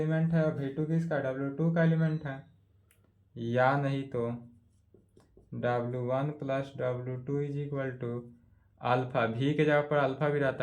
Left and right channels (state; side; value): identical; both; correlation 1.00